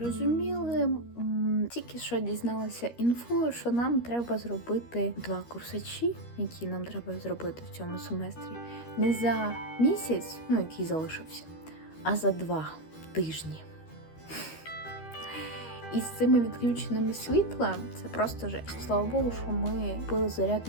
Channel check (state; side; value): late; right; 13 ms